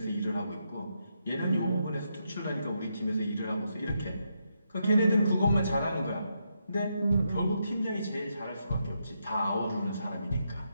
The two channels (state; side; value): inverted; both; correlation -0.81